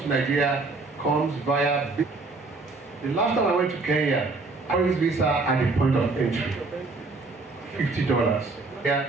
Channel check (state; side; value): quieter; left; 3.7 dB